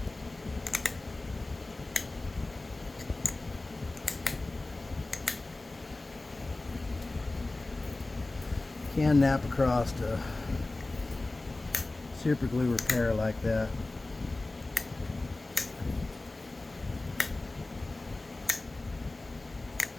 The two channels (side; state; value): right; quieter; 3.0 dB